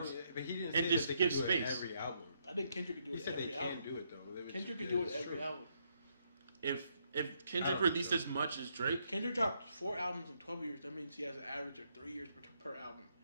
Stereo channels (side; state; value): both; inverted; correlation -0.75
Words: But he didn't and say just that they give could do it space. every album. I think Kendrick could do He it said every they album. can do it though. Kendrick could do it every album. if I Kendrick don't released think so. as much as Drake, Kendrick dropped 4 albums in 12 years. That means he has an average of 3 years per album.